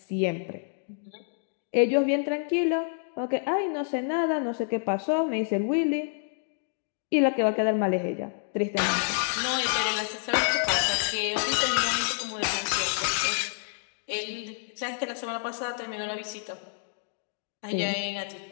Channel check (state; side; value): silent; right; digital silence